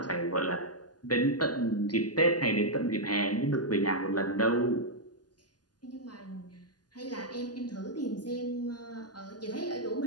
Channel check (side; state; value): right; late; 0.70 ms